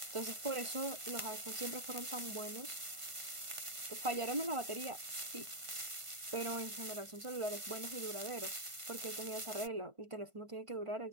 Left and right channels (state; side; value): late; left; 1.5 ms